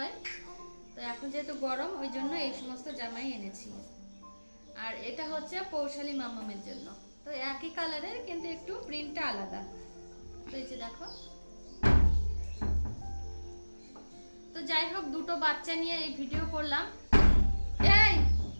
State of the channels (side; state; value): both; inverted; correlation -1.00